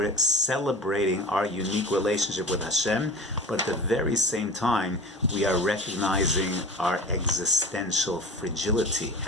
celebrating our unique relationship with Hashem, but at the very same time, we are recognizing our existential fragility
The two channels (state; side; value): normal; both; correlation 0.35